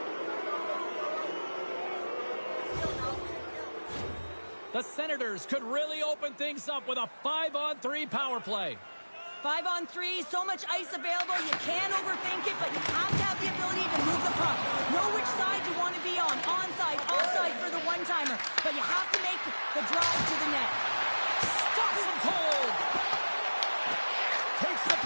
The Senators could really open things up with a 5-on-3 power play. 5-on-3, so much ice available. You can't overthink it, but you have to have the ability to move the puck. Know which side you want to be on. Onside, offside for the one-timer. But you have to make the drive to the net. Stops him cold. Takes the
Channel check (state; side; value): inverted; both; correlation -1.00